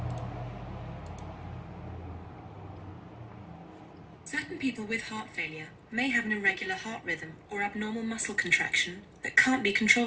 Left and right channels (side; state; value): both; identical; correlation 1.00